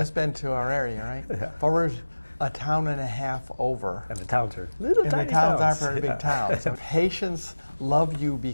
been to our area, right? Fall River's a town and a half over. And the towns are little tiny towns. And the towns aren't very big towns. So patients love you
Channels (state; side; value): inverted; both; correlation -1.00